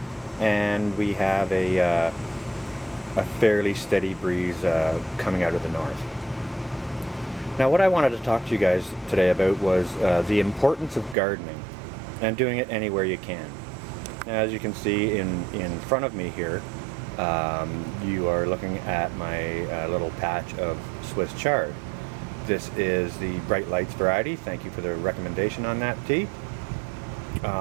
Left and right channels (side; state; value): left; drops out; at 11.2 s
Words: and we have a fairly steady breeze coming out of the north. Now, what I wanted to talk to you guys today about was the importance of gardening and doing it anywhere you can. Now, as you can see in front of me here, you are looking at my little patch of Swiss chard. This is the Bright Lights variety. Thank you for the recommendation on that tea.